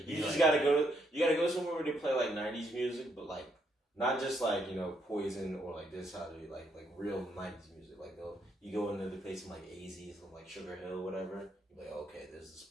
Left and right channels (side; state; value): both; normal; correlation 0.74